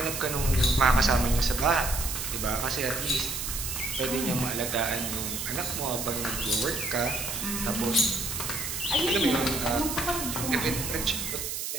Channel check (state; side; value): noise; right; hiss, 4 dB below the sound